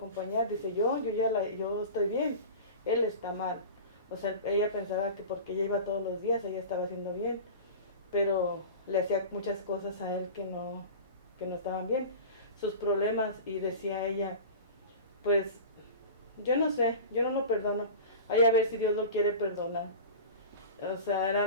Dice, yo estoy bien, él está mal. O sea, ella pensaba que porque ella iba todos los días, ella estaba haciendo bien, pero le hacía muchas cosas a él que no estaban bien, sus problemas, y decía ella, pues, yo no sé, yo no lo perdono, hay a ver si Dios lo quiere perdonar. O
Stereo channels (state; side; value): inverted; both; correlation -0.34